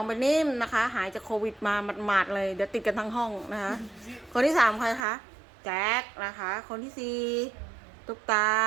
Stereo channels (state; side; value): drops out; left; at 5.0 s